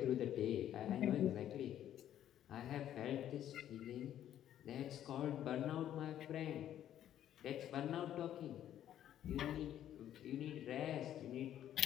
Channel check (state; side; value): quieter; right; 11.2 dB